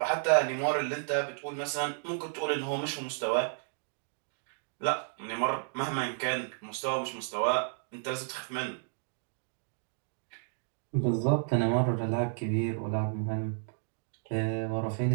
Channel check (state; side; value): silent; left; digital silence